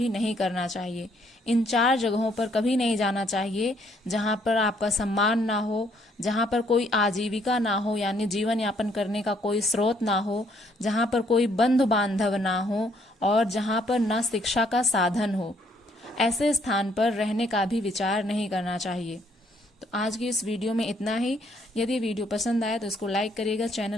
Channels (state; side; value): normal; both; correlation 0.67